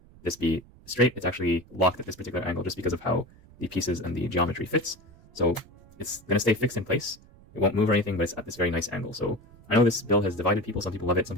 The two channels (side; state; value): right; noise; rumble, 24 dB below the sound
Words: this be straight, it's actually locked at this particular angle just because of how the pieces and the geometry fits. So it's going to stay fixed in place. It won't move or anything, but it's at this very nice angle. So I know this build has divided people. Some people love it, some